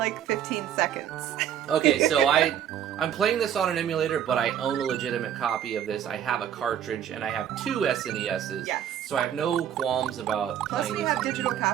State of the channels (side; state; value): left; quieter; 9.7 dB